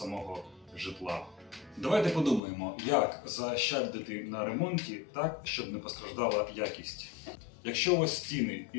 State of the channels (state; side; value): drops out; right; at 2.4 s